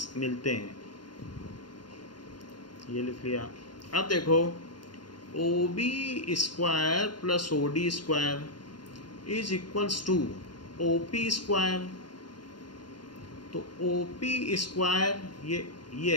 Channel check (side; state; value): right; late; 0.71 ms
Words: मिलते हैं। ये लिख लिया। अब देखो OB square plus OD square is equals to OP square तो OP स्क्वायर ये